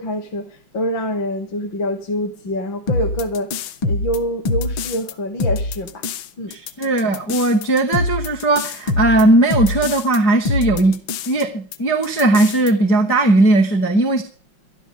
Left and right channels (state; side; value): late; right; 5.5 ms